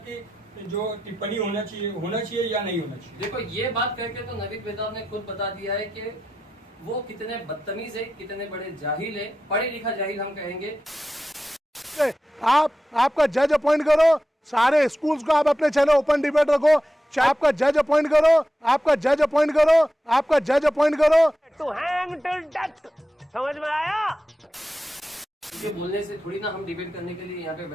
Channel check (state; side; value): normal; both; correlation 0.90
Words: जो टिप्पणी होना चाहिए या नहीं होना चाहिए। देखो, ये बात करके तो नवीद बेताब ने खुद बता दिया है कि वो कितने बदतमीज है, कितने बड़े जाहिल है, पढ़े लिखा जाहिल हम कहेंगे। आपका जज अपॉइंट करो, सारे स्कूल्स को आप अपने चैनल ओपन डिबेट रखो, आपका जज अपॉइंट करो, आपका जज अपॉइंट करो, आपका जज अपॉइंट करो। टू हैंग टिल डेथ, समझ में आया? ये बोलने से थोड़ी ना हम डिबेट करने के लिए यहाँ पे